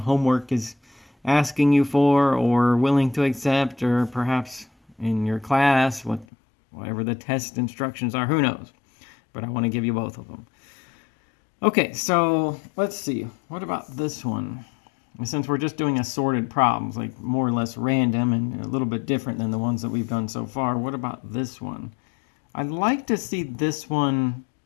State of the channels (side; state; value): right; drops out; at 6.2 s